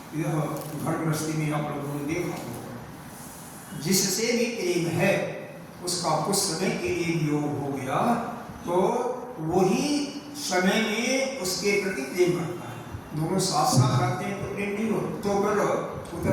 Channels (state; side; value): identical; both; correlation 1.00